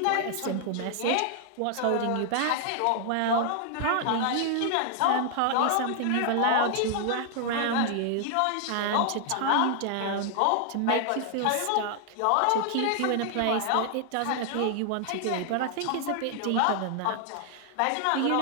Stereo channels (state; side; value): different; both; correlation 0.00